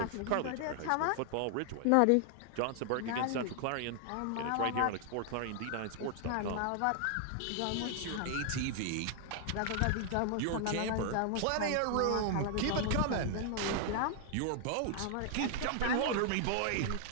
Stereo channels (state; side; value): different; both; correlation 0.00